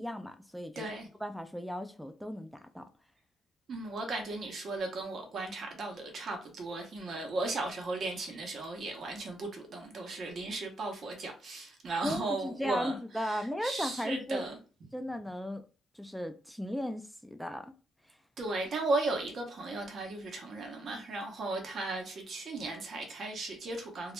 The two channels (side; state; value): both; normal; correlation 0.79